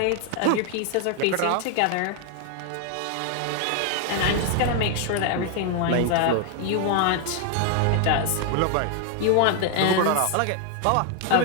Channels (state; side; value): different; both; correlation 0.00